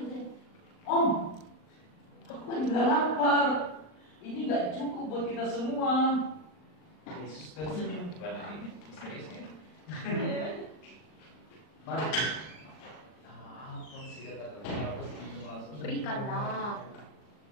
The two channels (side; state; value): right; late; 39 ms